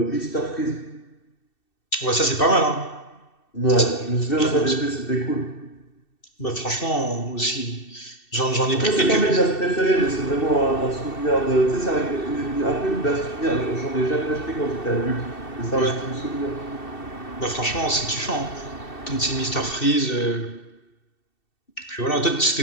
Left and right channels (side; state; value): right; late; 2.7 ms